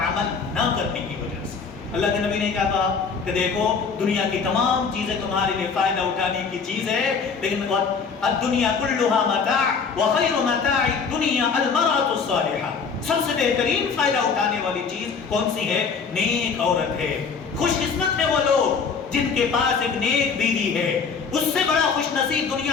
نہ کرنے کی وجہ سے. اللہ کے نبی نے کیا کہا کہ دیکھو دنیا کی تمام چیزیں تمہارے لیے فائدہ اٹھانے کی چیز ہے، لیکن الدنیا کلھا متاع وخیر متاع الدنیا المرأة الصالحہ. سب سے بہترین فائدہ اٹھانے والی چیز کون سی ہے؟ نیک عورت ہے. خوش قسمت ہے وہ لوگ جن کے پاس ایک نیک بیوی ہے. اس سے بڑا خوش نصیب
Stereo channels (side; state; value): right; quieter; 5.5 dB